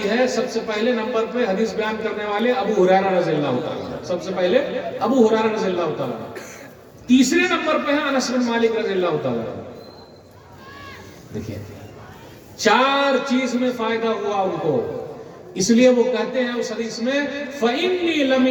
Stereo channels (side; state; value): both; identical; correlation 1.00